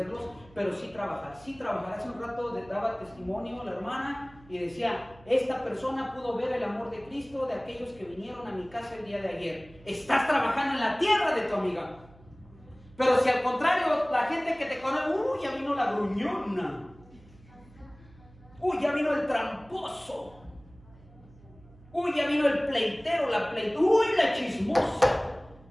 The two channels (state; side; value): noise; right; hum, 24 dB below the sound